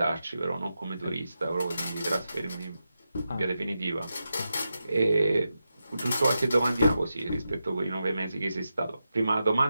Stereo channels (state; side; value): inverted; both; correlation -0.89